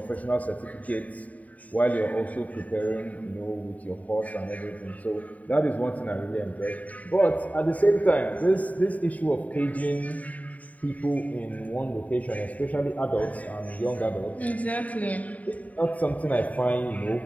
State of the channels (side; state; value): right; late; 0.071 ms